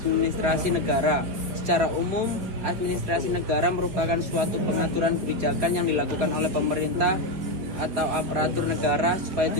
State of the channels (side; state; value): left; late; 4.3 ms